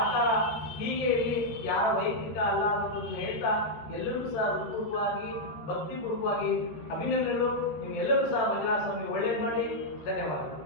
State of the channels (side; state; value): right; late; 13 ms